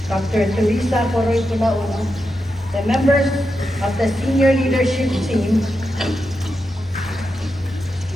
Dr. Teresa Coroy Pulaono, the members of the senior leadership team,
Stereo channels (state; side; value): normal; both; correlation 0.87